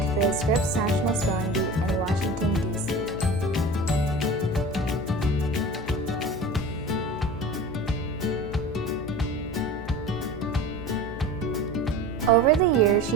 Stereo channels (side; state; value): left; noise; hum, 12 dB below the sound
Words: the Scripps National Spelling Bee in Washington, D.C. Over the years,